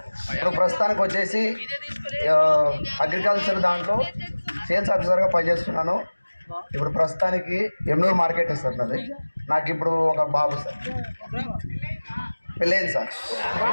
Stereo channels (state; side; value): inverted; both; correlation -1.00